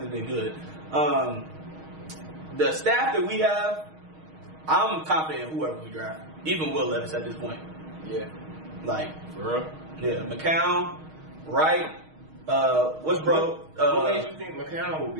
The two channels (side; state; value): left; late; 6.4 ms